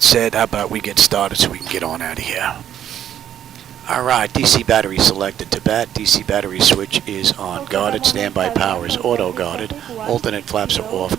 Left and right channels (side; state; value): left; quieter; 10.3 dB